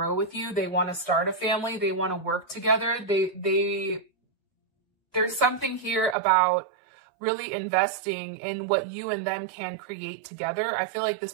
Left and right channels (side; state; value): left; drops out; at 6.2 s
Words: with you. They want to start a family. They want to work together. There's something here about really investing in what you and them can create together. I feel like this